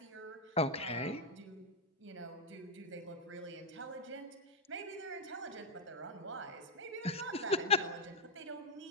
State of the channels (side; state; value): both; normal; correlation 0.02